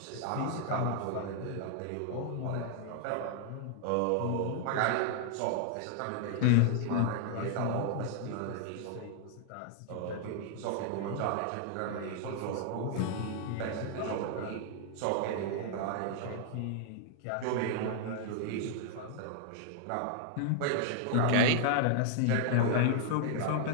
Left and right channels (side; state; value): both; different; correlation 0.00